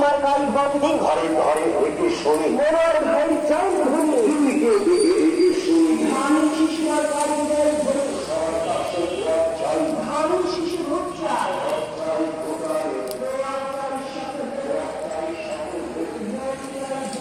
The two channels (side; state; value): both; identical; correlation 1.00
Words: মার্কায় ভোট দিন ঘরে ঘরে এটি শুনি, মনোয়ার ভাই চাই ধনী ধানের শিশু মার্কায় ভোট দিন ধানের শিশু ভোট চাই